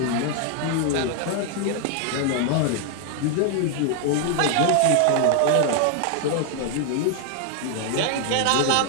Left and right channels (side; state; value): both; different; correlation 0.00